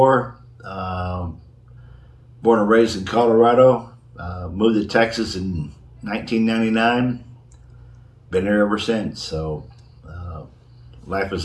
Born and raised in Colorado. Moved to Texas in 1999. Been there ever since, so life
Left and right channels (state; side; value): identical; both; correlation 1.00